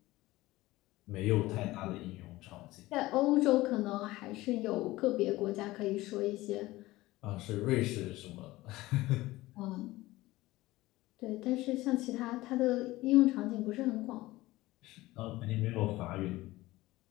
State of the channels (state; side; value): quieter; right; 18.4 dB